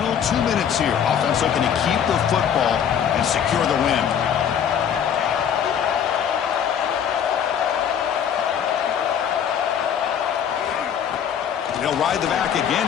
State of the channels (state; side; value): quieter; right; 8.5 dB